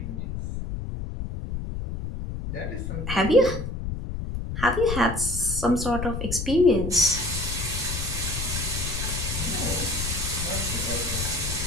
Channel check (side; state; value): left; noise; rumble, 5 dB below the sound